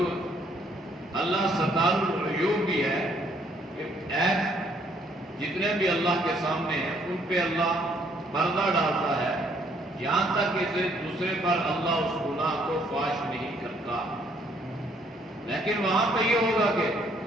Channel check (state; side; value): normal; both; correlation 0.66